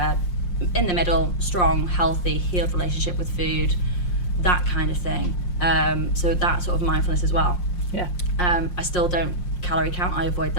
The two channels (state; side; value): late; right; 5.6 ms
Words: in the middle, strong, healthy, healed relationship with food, that kind of thing. So that sort of mindfulness as well. I still don't calorie count. I avoid